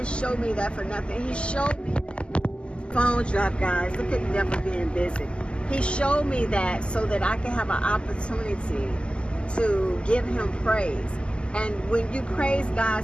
show me that for nothing. He showed me that. Phone drop, guys. Look at the devil being busy. He showed me that so that I can have an opportunity to give him praise. And when you praise God,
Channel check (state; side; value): late; right; 0.051 ms